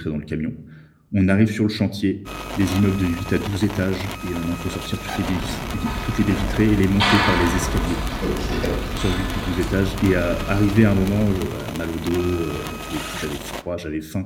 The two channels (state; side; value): identical; both; correlation 1.00